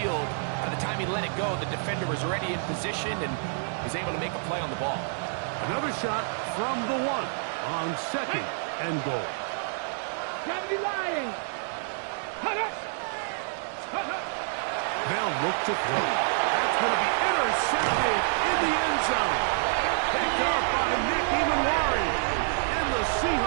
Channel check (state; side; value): silent; left; digital silence